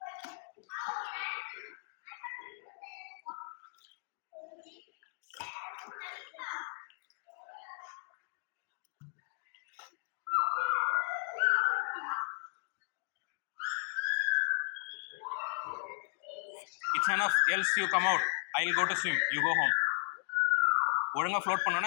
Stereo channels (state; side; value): silent; right; digital silence